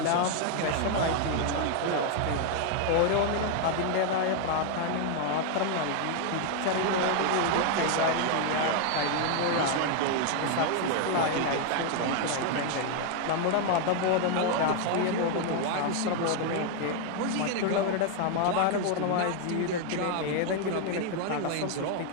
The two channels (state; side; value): different; both; correlation 0.00